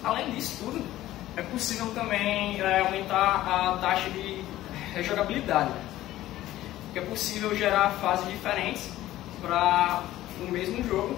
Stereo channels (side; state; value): right; quieter; 14.9 dB